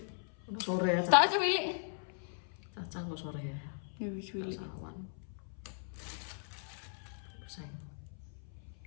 Udah sore ya. tak aja milik. Caca kok sore ya. Ya wis milik. Sawan. Pusing.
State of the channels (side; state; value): right; silent; 53 dB below the other